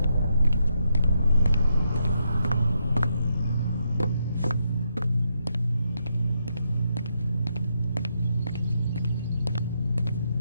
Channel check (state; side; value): inverted; both; correlation -0.80